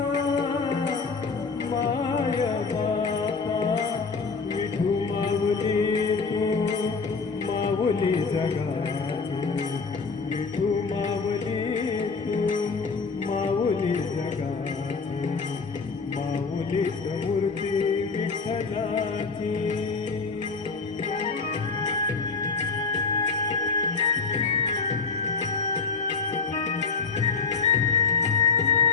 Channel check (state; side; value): quieter; right; 4.7 dB